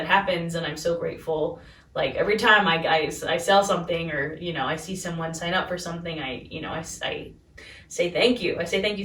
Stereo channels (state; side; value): identical; both; correlation 1.00